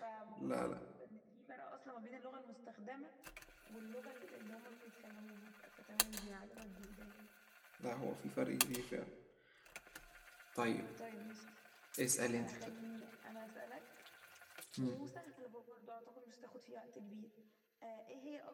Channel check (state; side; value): identical; both; correlation 1.00